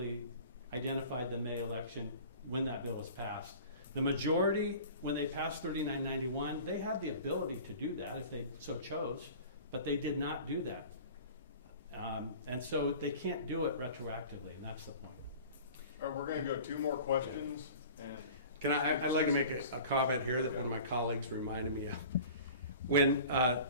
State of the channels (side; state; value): both; inverted; correlation -0.42